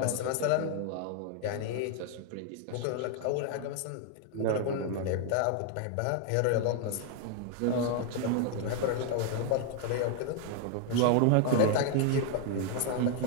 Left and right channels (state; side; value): different; both; correlation 0.00